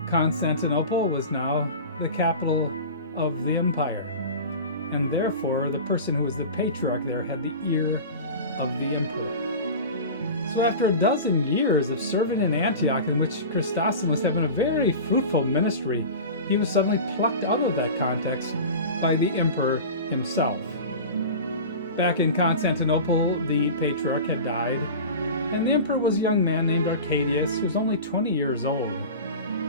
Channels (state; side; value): inverted; both; correlation -0.32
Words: Constantinople was now the capital of the empire, and therefore the person who was the patriarch there had the ear of the emperor. So after a dozen years of serving in Antioch, in which Chrysostom was having a very fruitful ministry, he was suddenly plucked out of that context by the emperor himself. Back in Constantinople, the patriarch had died, and the emperor was a young man named Arcadius, who was only 20 years old.